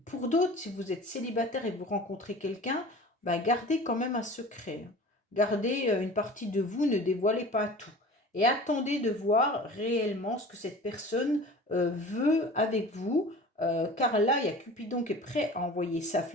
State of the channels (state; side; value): normal; both; correlation 0.40